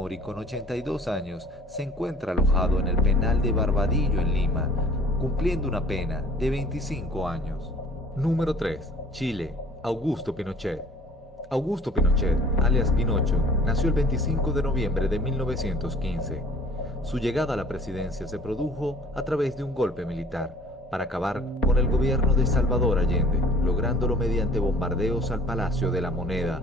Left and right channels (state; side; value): normal; both; correlation 0.52